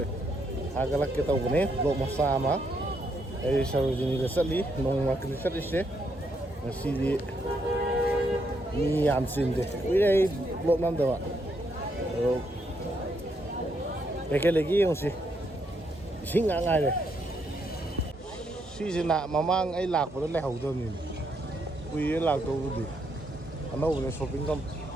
agalak kita ubne vlog masama ai Sarojini gasali nong market sali se sidi ni am sinde wi ai vlog nam dawa ekelegi yongsi singa ngai le sisina mamang ai lak pa le hau do ni wi lak do bu ano udah shopping kan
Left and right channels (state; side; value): normal; both; correlation 0.76